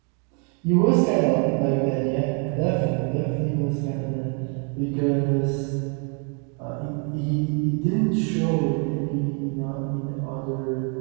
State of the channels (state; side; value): quieter; left; 39.2 dB